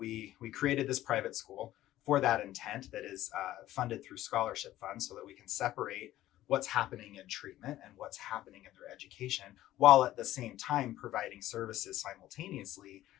created this private school for that intent that is funded through scholarship funds so that we can separate what's happening in treatment and what's happening in their education, while at the same time providing services simultaneously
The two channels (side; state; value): right; quieter; 14.5 dB